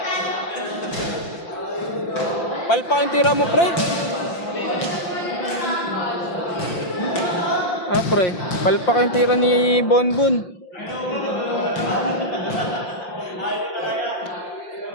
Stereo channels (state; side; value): late; right; 5.8 ms